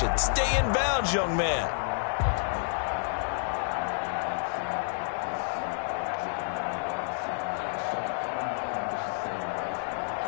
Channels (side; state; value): right; silent; digital silence